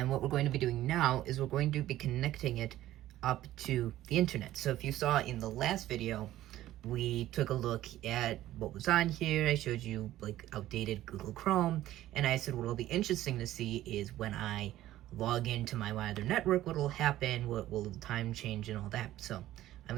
what we're going to be doing now is we're going to be connecting it up to the internet. So if you saw in the last video, we took a look at what was on here. I showed you like outdated Google Chrome, and I said what will be interesting to see is when I log into my wider network, what will happen, what will the time change and all that. So I'm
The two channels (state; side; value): quieter; left; 14.3 dB